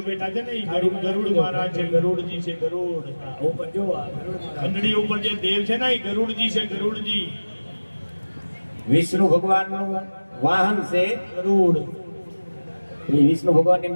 બેઠા છે ને એ ગરુડ મહારાજ છે, ગરુડજી છે. ગરુડ ઉપર જો ઘંટડી ઉપર જે દેવ છે ને એ ગરુડજી છે. ગરુડજી વિષ્ણુ ભગવાનનું વાહન છે ગરુડ. એ વિષ્ણુ ભગવાનની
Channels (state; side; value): inverted; both; correlation -1.00